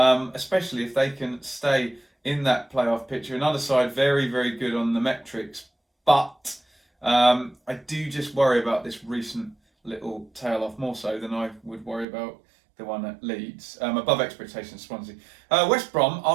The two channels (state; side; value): drops out; left; at 12.1 s